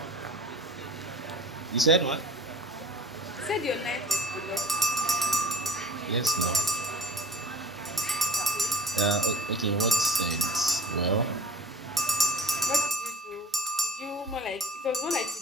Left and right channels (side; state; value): both; normal; correlation 0.45